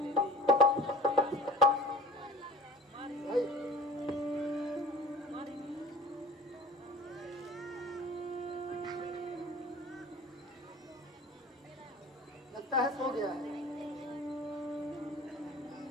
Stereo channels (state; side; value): normal; both; correlation 0.42